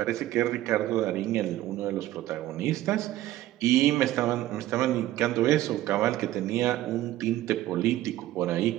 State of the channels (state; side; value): quieter; left; 14.8 dB